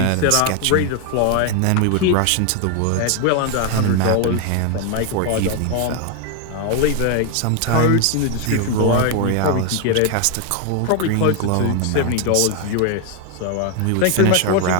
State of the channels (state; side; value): different; both; correlation 0.00